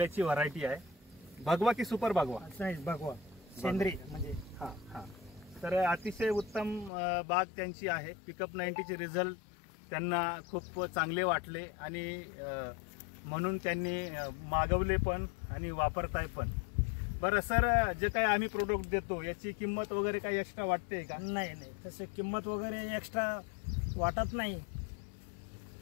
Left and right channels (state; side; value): drops out; right; at 6.9 s